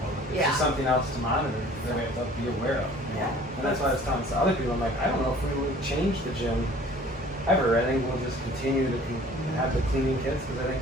It's just something else to monitor that we have to be aware of. Yeah. And that's why I was telling other people, I'm like, I don't know if we would change the gym ever. I think we'll just continue to have the cleaning kits because I think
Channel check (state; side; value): normal; both; correlation 0.50